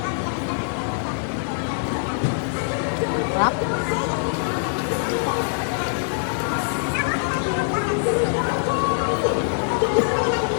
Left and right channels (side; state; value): right; silent; digital silence